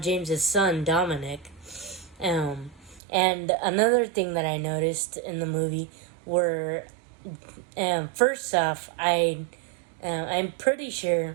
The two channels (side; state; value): left; drops out; at 3.0 s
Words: James's son Dominic. And another thing that I noticed in the movie were, first off, I'm pretty sure